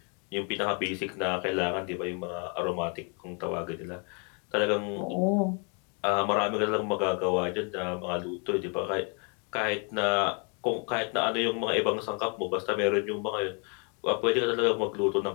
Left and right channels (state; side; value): quieter; right; 37.2 dB